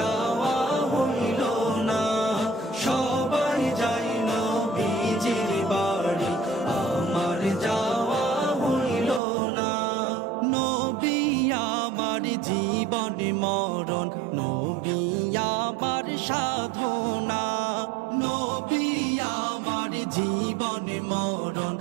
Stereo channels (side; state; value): left; drops out; at 9.2 s